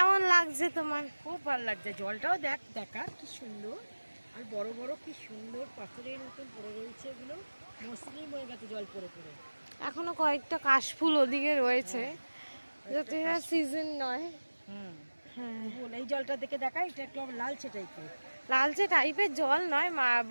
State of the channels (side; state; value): both; inverted; correlation -1.00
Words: লাগছে তোমার? খুব ভালো লাগছে। জলটাও দেখ, দেখা কি সুন্দর, আর বড় বড় কি সুন্দর পাথরের মতন পড়ে রয়েছে, এগুলো মসৃণ হয়ে গেছে জল পড়ে পড়ে। এখনো কয়েকটা কাশফুল ওদিকে রয়েছে, যাতে সিজন নয়। হ্যাঁ, এই জলটা দেখে দেখা, এটা একটু আবার লালচে টাইপের। লালচে টাইপের জল নয়,